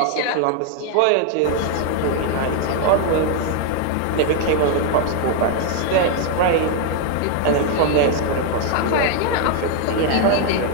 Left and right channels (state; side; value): different; both; correlation 0.00